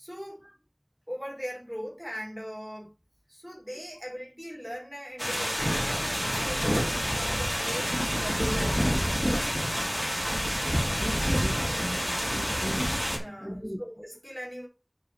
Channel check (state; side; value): identical; both; correlation 1.00